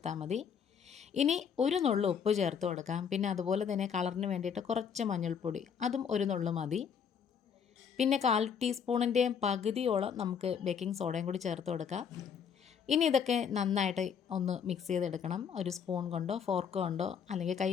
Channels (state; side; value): quieter; right; 7.2 dB